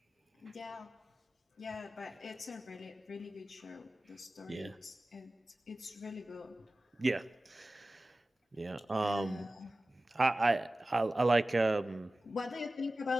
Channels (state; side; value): normal; both; correlation 0.96